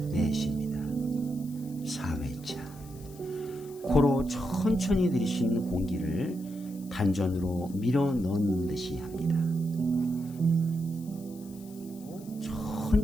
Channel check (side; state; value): left; noise; hiss, 22 dB below the sound